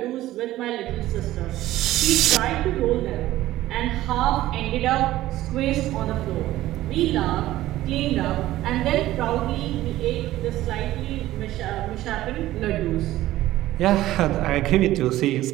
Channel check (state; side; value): quieter; left; 15.2 dB